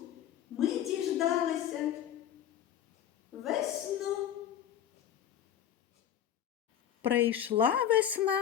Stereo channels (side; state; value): right; quieter; 10.2 dB